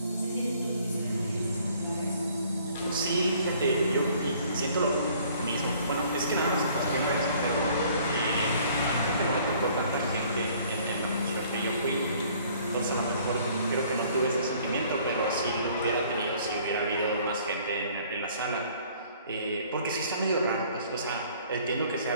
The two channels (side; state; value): both; inverted; correlation -0.57